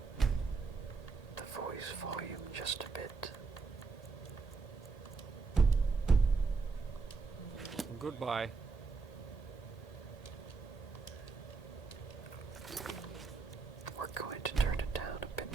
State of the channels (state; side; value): quieter; left; 4.5 dB